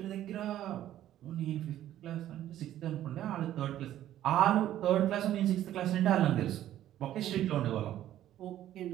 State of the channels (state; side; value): quieter; left; 12.5 dB